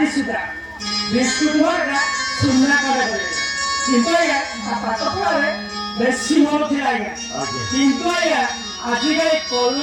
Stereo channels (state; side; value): identical; both; correlation 1.00